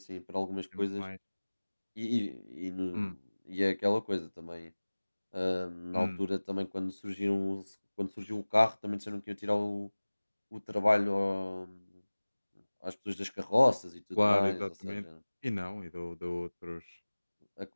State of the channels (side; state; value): both; inverted; correlation -1.00